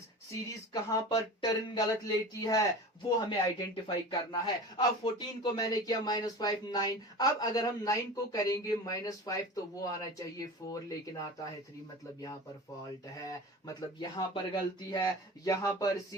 कहां पर टर्न गलत लेती है, वो हमें आइडेंटिफाई करना है। अब 14 को मैंने किया -5 9, अब अगर हम 9 को करेंगे -5 तो वो आना चाहिए 4 लेकिन आता है 3, मतलब यहां पर फॉल्ट है, मतलब यहां पर गलती है, यहां पर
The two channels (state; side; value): normal; both; correlation 0.34